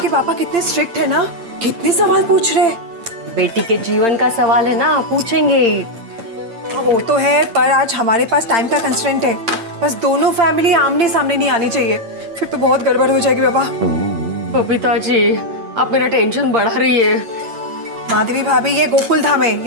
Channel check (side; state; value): left; late; 8.7 ms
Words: पापा कितने स्ट्रिक्ट है ना, कितने सवाल पूछ रहे। बेटी के जीवन का सवाल है ना, पूछेंगे ही। वो तो है, पर आज हमारे पास टाइम का कंस्ट्रेंट है। बस दोनों फैमिली आमने सामने नहीं आनी चाहिए, फिर तो बहुत गड़बड़ हो जाएगी बाबा। बबीता जी, आप मेरा टेंशन बढ़ा रही है। माधवी भाभी, ये गोकुल धाम है,